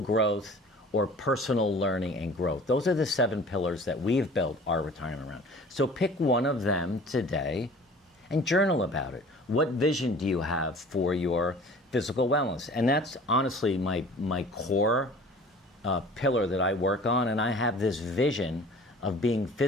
or personal learning and growth. Those are the 7 pillars that we've built our retirement around. So pick one of them today and journal about it. What vision do you have for your physical wellness? And that's honestly my core pillar that I work on, and I have this vision of being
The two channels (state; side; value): normal; both; correlation 0.46